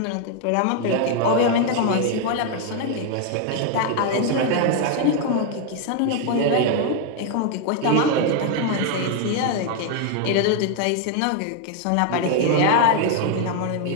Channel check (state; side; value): different; both; correlation 0.00